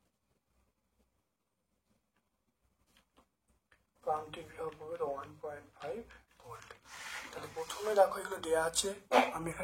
1.5 ভোল্ট। তাহলে প্রথমে দেখো এগুলো দেওয়া আছে, আমি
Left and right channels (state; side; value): identical; both; correlation 1.00